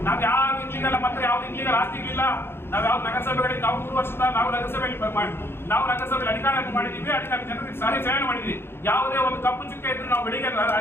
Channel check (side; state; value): right; late; 0.11 ms